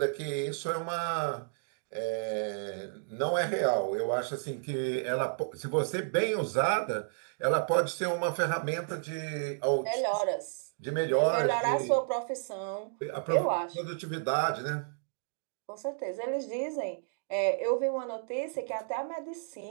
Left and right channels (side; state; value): left; silent; digital silence